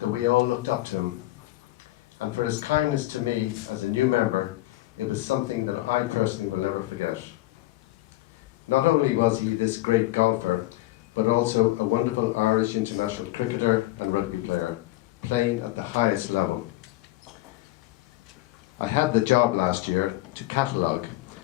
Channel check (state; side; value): quieter; right; 17.6 dB